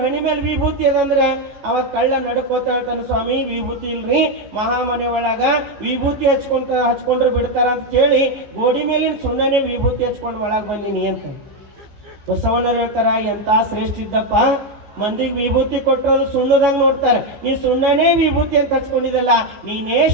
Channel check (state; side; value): late; left; 14 ms